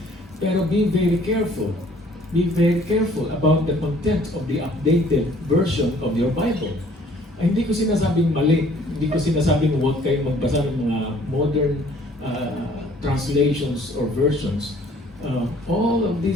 Pero be very careful. Be very careful about the content of the updated version of your Bible. Ay, hindi ko sinasabing mali. Hindi ko sinasabing huwag kayong magbasa ng mga modern translations or versions. All of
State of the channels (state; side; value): normal; both; correlation 0.57